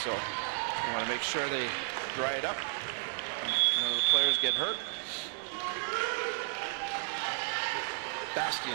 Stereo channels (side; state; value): left; silent; digital silence